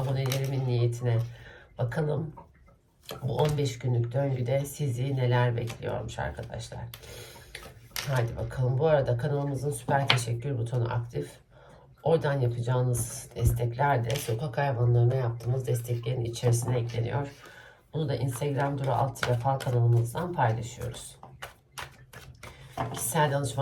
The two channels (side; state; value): both; identical; correlation 1.00